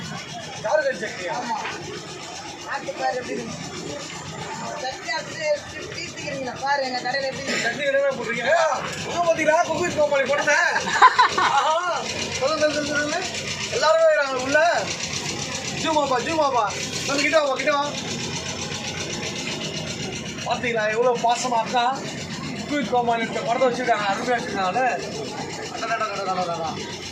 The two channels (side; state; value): both; identical; correlation 1.00